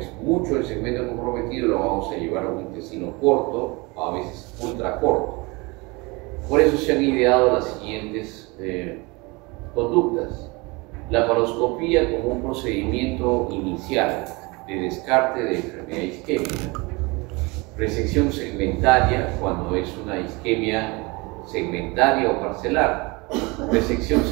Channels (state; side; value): quieter; left; 26.0 dB